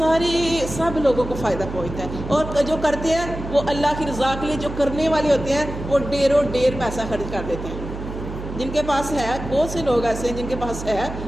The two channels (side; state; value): right; noise; hum, 9 dB below the sound